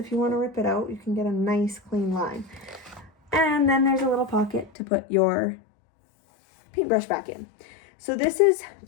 you want to rip it out, you can get a nice clean line. And then there's a little pocket to put your paintbrush back in. So this is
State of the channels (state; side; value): drops out; right; at 4.7 s